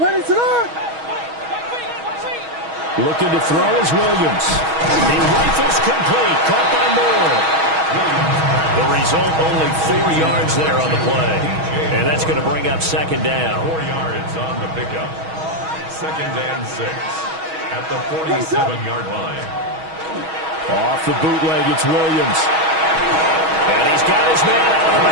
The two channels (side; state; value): left; late; 6.3 ms